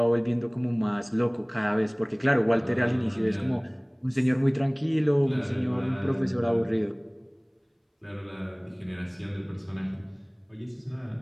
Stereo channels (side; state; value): both; identical; correlation 1.00